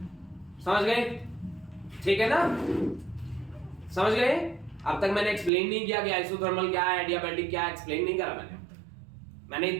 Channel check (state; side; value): drops out; left; at 5.5 s